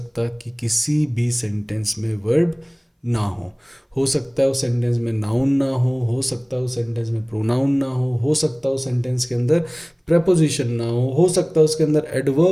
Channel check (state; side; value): identical; both; correlation 1.00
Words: कि किसी भी सेंटेंस में वर्ब ना हो सकता है उस सेंटेंस में नाउन ना हो सकता है उस सेंटेंस में प्रोनाउन ना हो सकता है उस सेंटेंस के अंदर प्रेपोजिशन ना हो सकता है उसके अंदर